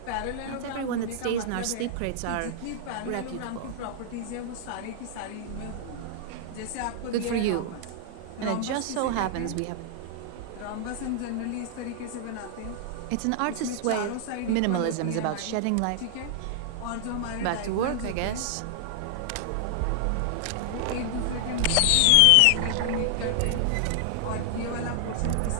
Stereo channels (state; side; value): different; both; correlation 0.00